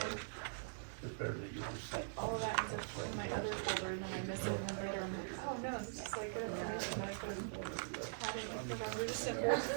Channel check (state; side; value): silent; left; digital silence